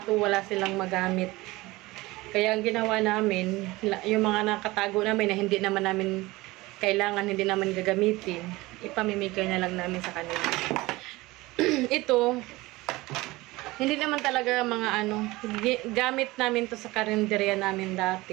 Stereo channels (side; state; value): left; quieter; 20.5 dB